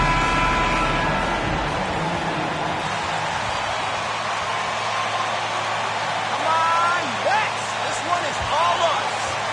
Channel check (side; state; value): both; identical; correlation 1.00